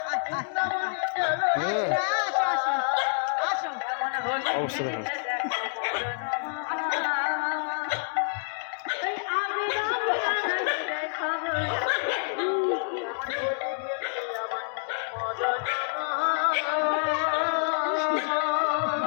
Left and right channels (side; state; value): right; silent; digital silence